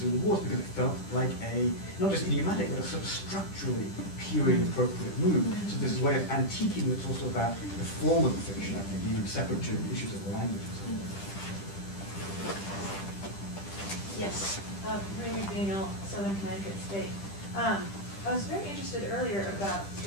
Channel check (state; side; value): late; right; 10 ms